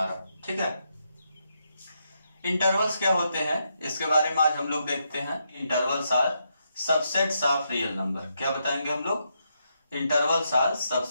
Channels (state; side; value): inverted; both; correlation -0.80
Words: ठीक है, इंटरवल्स क्या होते हैं इसके बारे में आज हम लोग देखते हैं। Intervals are subsets of real number. क्या बताएंगे हम लोग? Intervals are